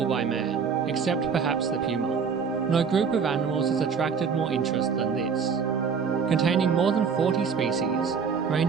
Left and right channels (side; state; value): left; quieter; 6.0 dB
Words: by man, except perhaps the puma, no group of animals has attracted more interest than this. Containing more than 40 species,